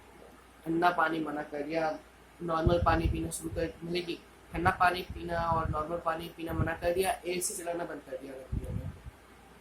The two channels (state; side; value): identical; both; correlation 1.00